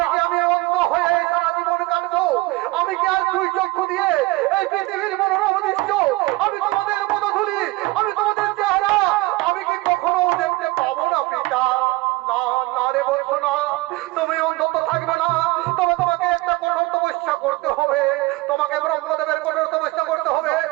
কি আমি অন্ধ হয়ে সারা জীবন কাটবো? আমি কি আর দুই চক্ষু দিয়ে এই পৃথিবীর মনোরম দৃশ্য, আমি তোমাদের পদধূলি, আমি তোমাদের চেহারা আমি কি কখনো দেখতে পাবো না পিতা? না না রে বলছো না, তুমি অন্ধত্ব থাকবে না, তবে তোমাকে একটা কঠোর তপস্যা করতে হবে, তোমাকে ব্রহ্মদেবের কঠোর তপস্যা করতে হবে।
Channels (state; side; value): quieter; left; 20.8 dB